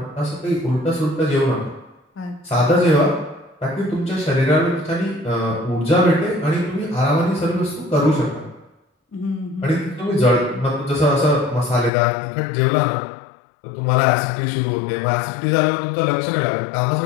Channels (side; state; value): right; drops out; at 11.9 s